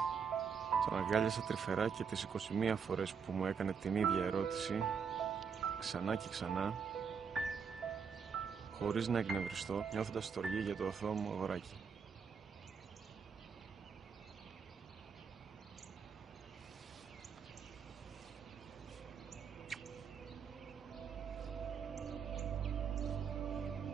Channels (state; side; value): quieter; left; 6.3 dB